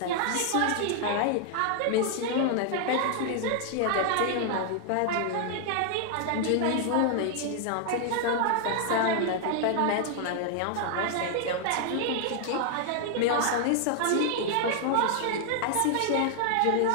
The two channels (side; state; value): both; different; correlation 0.00